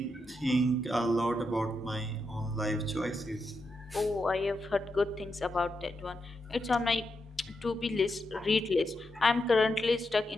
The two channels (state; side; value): normal; both; correlation 0.85